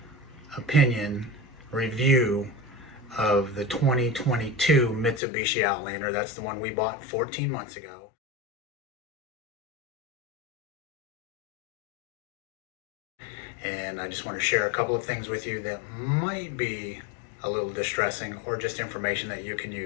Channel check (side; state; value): right; drops out; at 5.2 s